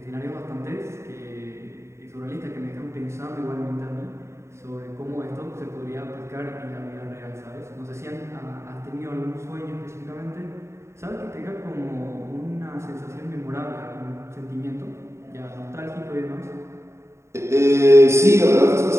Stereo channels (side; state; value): left; late; 0.13 ms